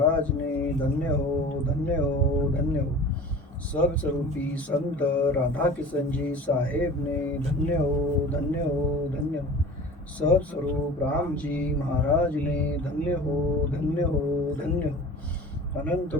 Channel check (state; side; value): normal; both; correlation 0.40